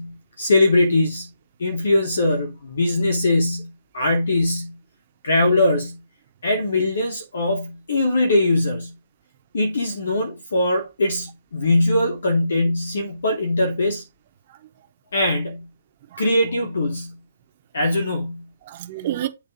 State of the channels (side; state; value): both; inverted; correlation -0.80